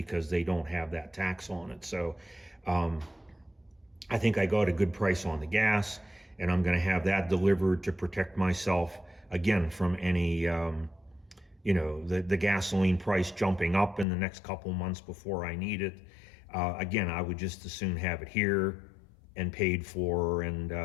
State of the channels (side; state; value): right; drops out; at 14.1 s